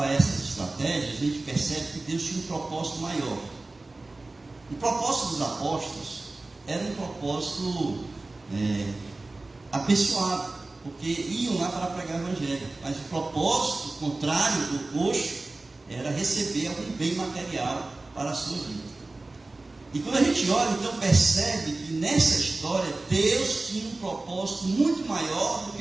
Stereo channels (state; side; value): quieter; left; 3.2 dB